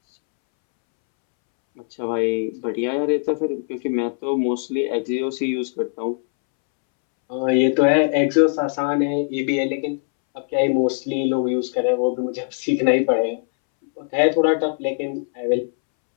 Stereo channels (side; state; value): right; silent; 65 dB below the other